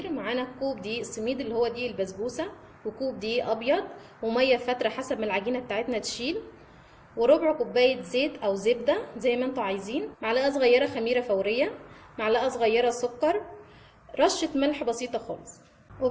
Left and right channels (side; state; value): both; identical; correlation 1.00